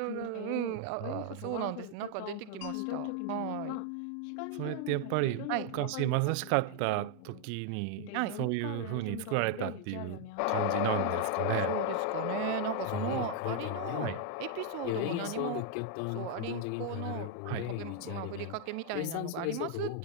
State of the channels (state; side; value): different; both; correlation 0.00